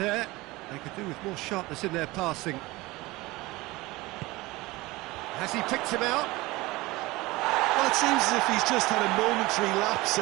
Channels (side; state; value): left; quieter; 20.9 dB